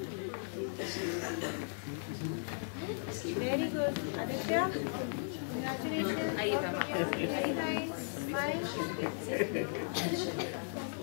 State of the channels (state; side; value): silent; right; digital silence